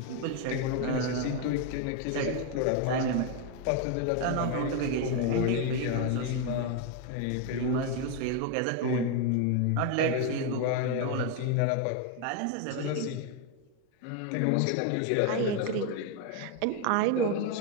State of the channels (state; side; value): different; both; correlation 0.01